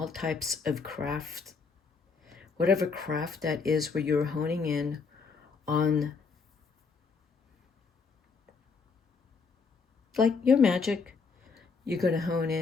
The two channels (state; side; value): quieter; right; 4.9 dB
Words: types of craft, whatever craft that is, where you're honing in on like your magic. You're going to hone